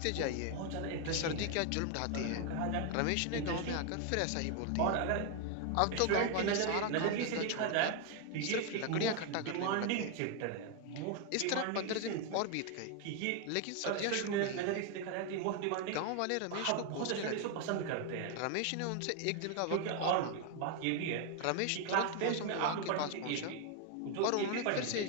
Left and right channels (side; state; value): both; different; correlation 0.01